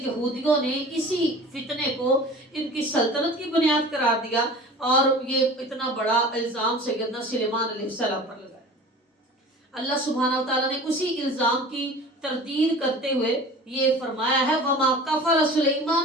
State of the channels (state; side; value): normal; both; correlation 0.40